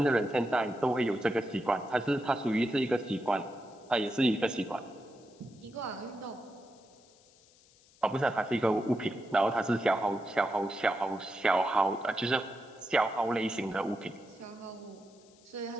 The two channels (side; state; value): left; noise; hiss, 28 dB below the sound